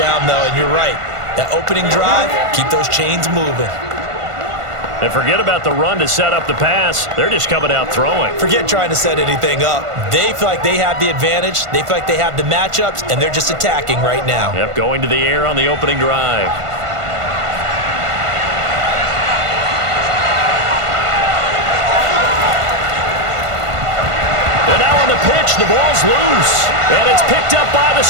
though. And you're right. That opening drive, keep those chains moving. And forget about the run to set up the pass. They're just coming out throwing. Forget trying to set anything up. They feel like they have the advantage. They feel like they have the matchups, and they're just attacking right now. Yep, going to the air on the opening drive. And now on the pitch, the ball's loose. And it's picked up by the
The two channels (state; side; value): late; left; 1.5 ms